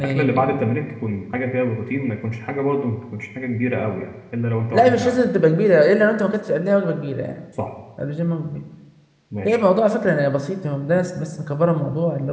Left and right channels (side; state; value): both; identical; correlation 1.00